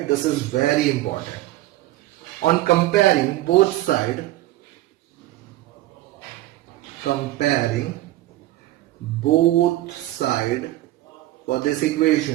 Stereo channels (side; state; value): left; quieter; 16.1 dB